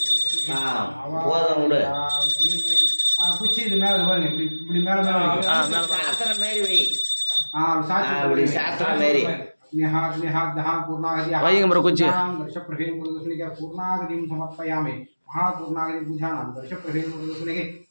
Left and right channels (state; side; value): inverted; both; correlation -1.00